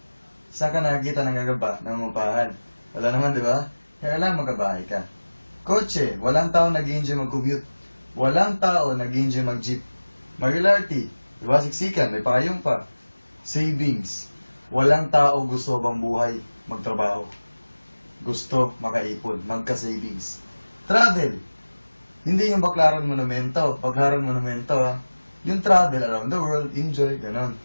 Saan ka nakakita ng gagamba? Nangungupahan. Wala naman, di ba? Kailangan magkabahay ka. Kotse, walang tao nag-enjoy mag-commute. Walang tao nag-enjoy mag-jeep. Regularity, di ba? Siksikan, may pakayong pa. Savings, walang tao gusto bang buhay magtrabaho. Gusto makaipon, magka-savings. Travel, hindi yung Baclaran Monumento, Pagharan Monumento, ha? Yung travel around the world, enjoy, ganon.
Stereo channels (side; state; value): both; inverted; correlation -1.00